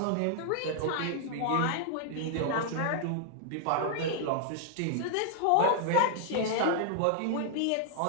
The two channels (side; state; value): both; different; correlation -0.01